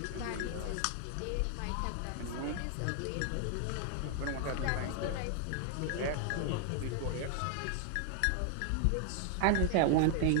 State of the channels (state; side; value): different; both; correlation 0.00